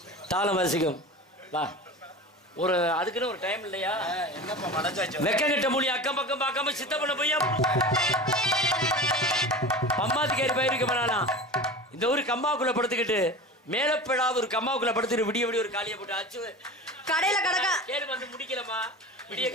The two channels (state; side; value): normal; both; correlation 0.32